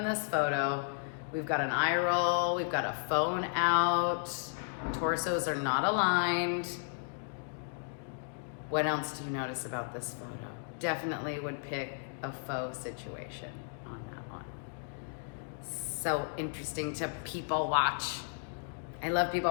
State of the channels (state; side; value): silent; right; digital silence